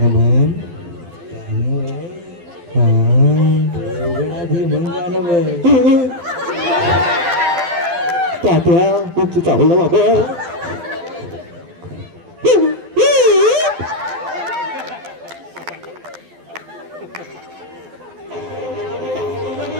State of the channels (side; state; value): left; late; 12 ms